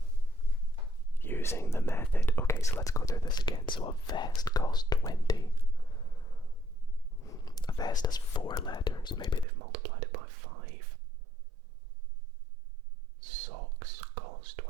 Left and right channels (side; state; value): left; drops out; at 9.5 s